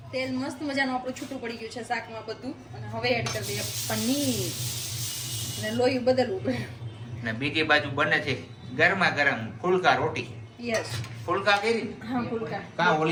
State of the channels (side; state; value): both; identical; correlation 1.00